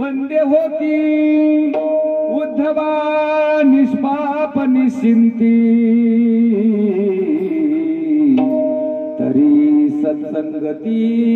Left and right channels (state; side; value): identical; both; correlation 1.00